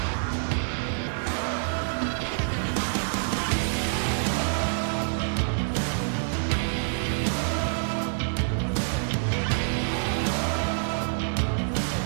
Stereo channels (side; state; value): left; silent; digital silence